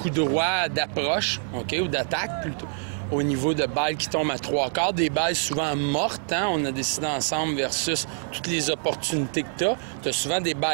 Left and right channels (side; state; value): left; silent; digital silence